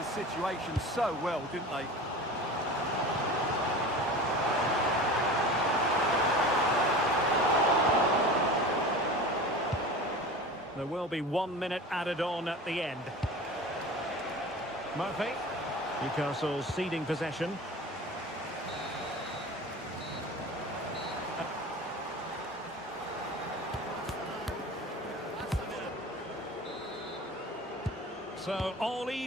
situation so well, didn't they? There will be 1 minute added on at the end. Murphy. Newcastle ceding possession. So all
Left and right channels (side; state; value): both; normal; correlation 0.34